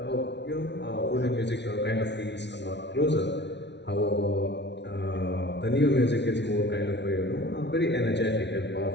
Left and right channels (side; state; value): right; late; 0.50 ms